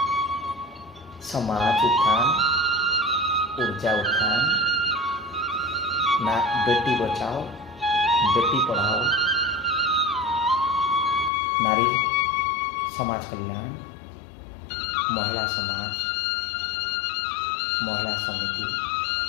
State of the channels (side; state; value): right; drops out; at 11.3 s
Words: समाज उत्थान, ऊर्जा उत्थान, ना बेटी बचाओ बेटी पढ़ाओ, नारी समाज कल्याण, महिला समाज, महिला समिति,